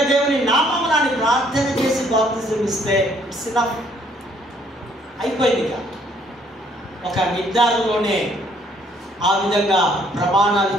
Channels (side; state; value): both; normal; correlation 0.64